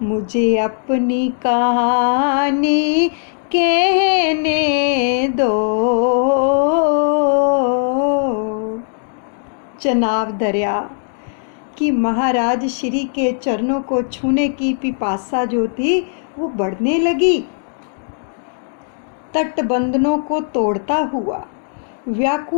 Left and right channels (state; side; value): silent; right; digital silence